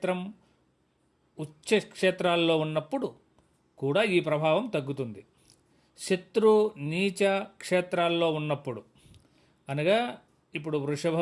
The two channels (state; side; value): identical; both; correlation 1.00